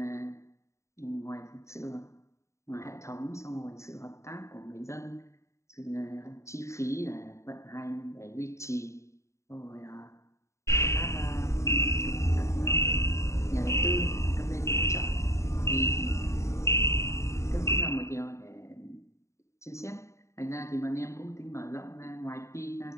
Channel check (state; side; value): late; right; 0.14 ms